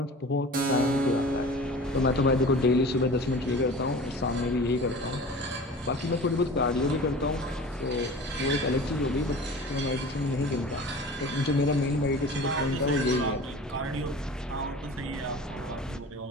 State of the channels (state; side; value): normal; both; correlation 0.39